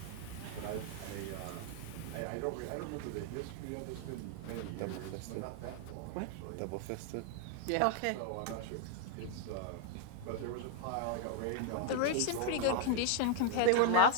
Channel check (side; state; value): both; different; correlation 0.00